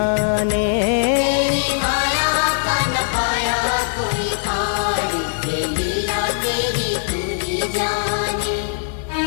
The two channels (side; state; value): right; silent; digital silence